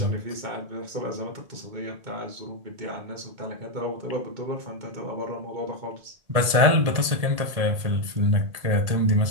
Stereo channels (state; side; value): late; left; 1.8 ms